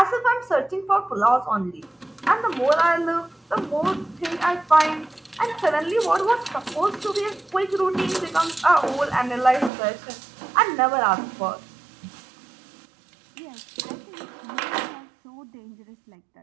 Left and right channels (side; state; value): left; drops out; at 9.7 s